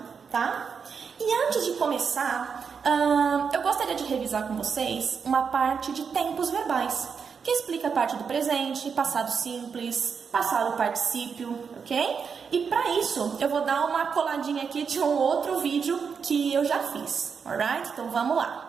tá? E antes de começar, eu gostaria de revisar com vocês uma parte de tempos verbais, que explica a parte do presente, passado simples, passado particípio, ok? E para isso, eu vou dar uma coladinha aqui de um outro vídeo que eu já fiz, alright? Então vamos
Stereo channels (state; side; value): quieter; left; 6.1 dB